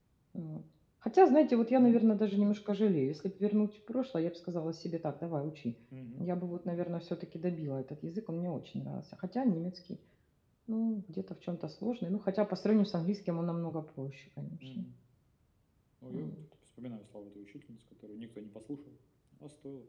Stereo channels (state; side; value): identical; both; correlation 1.00